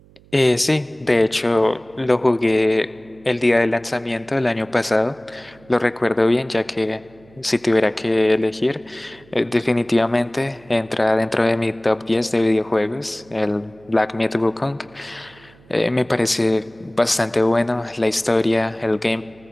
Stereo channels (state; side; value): noise; right; hum, 27 dB below the sound